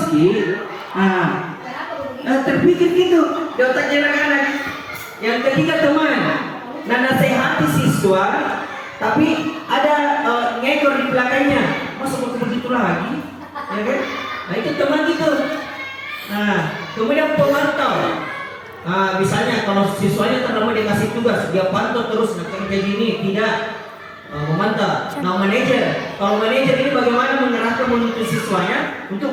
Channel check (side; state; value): both; identical; correlation 1.00